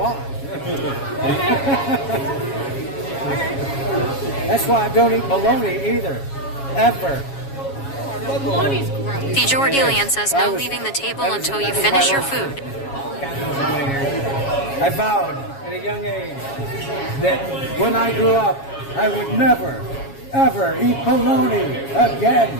That's why I don't eat bologna either. Ever. Bologna's gross. The Jordilian says no leaving the table until you finish your food. God knows how many years. I vowed at a young age that when I grew up, I would never, ever eat bologna again.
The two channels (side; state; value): right; late; 7.3 ms